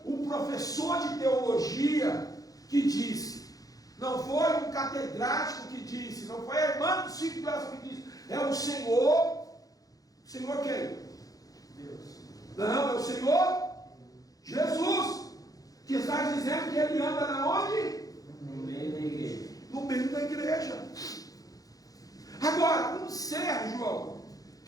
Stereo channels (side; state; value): right; late; 0.17 ms